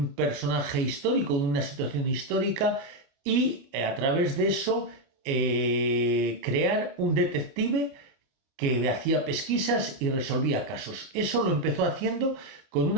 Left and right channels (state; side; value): late; left; 29 ms